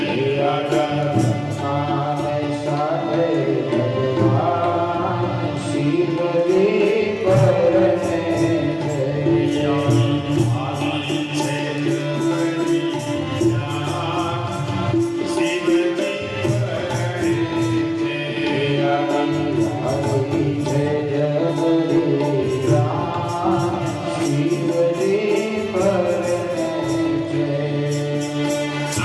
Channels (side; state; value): both; identical; correlation 1.00